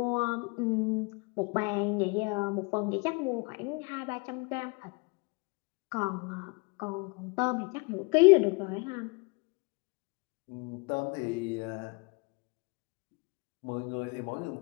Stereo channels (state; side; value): quieter; right; 30.6 dB